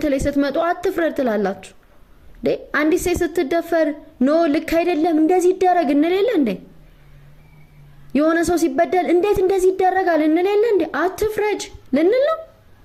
ላይ ስትመጡ አትፍረድ ትላላችሁ? አንዲት ሴት ስትደፈር ኖ ልክ አይደለም እንደዚህ ይደረግ እንለለ እንዴ? የሆነ ሰው ሲበደል እንዴት እንደዚህ ይደረጋል እንለለ እንዴ? አትፍረድ ልንል ነው።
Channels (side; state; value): both; identical; correlation 1.00